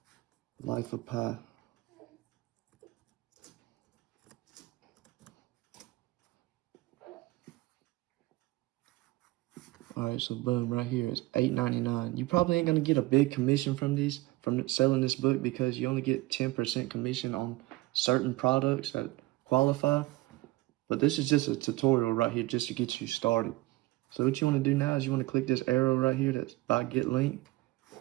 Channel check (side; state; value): left; quieter; 19.3 dB